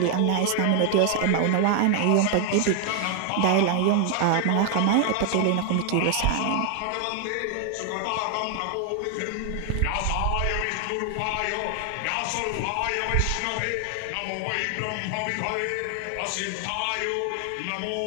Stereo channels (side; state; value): both; different; correlation 0.00